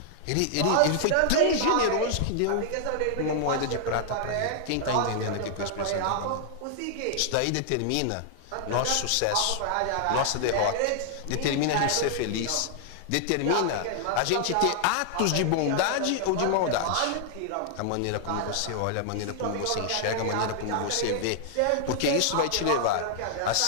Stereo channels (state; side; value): different; both; correlation -0.01